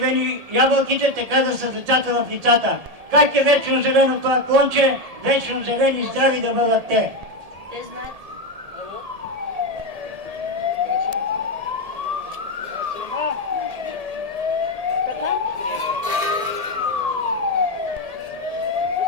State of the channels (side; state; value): left; late; 1.7 ms